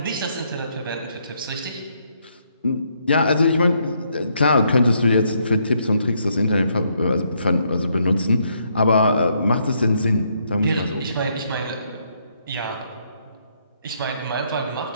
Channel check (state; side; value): inverted; both; correlation -0.74